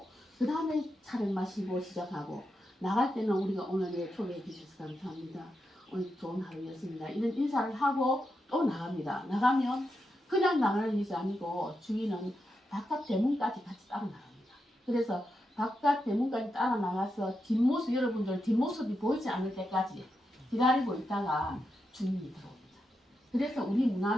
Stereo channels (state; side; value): normal; both; correlation 0.86